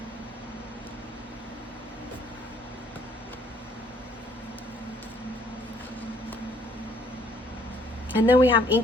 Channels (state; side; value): normal; both; correlation 0.63